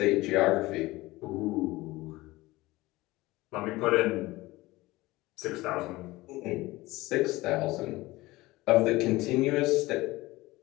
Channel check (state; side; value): quieter; right; 19.7 dB